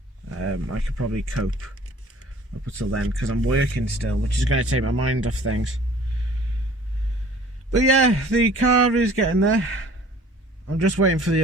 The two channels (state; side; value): normal; both; correlation 0.50